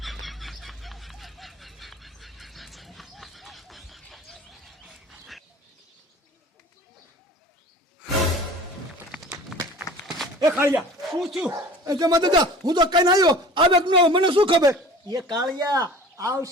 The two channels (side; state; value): both; normal; correlation 0.43